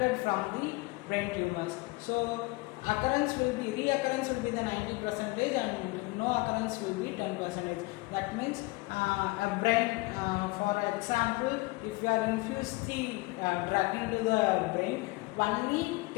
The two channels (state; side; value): quieter; right; 23.6 dB